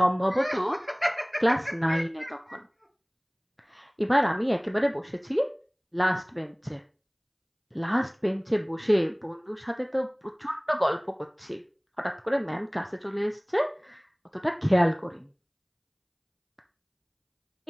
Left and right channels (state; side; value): identical; both; correlation 1.00